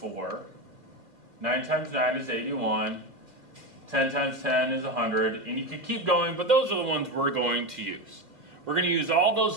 9 times 9 is 81, 10 times 10 is 100, and you could keep going, but those are the ones we're going to use. We're going to use all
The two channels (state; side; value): late; left; 2.2 ms